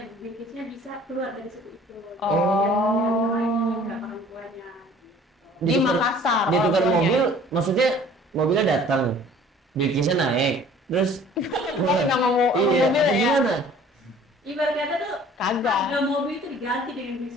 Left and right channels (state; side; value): normal; both; correlation 0.51